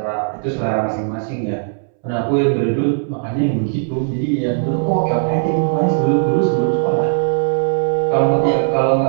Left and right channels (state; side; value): silent; left; 67 dB below the other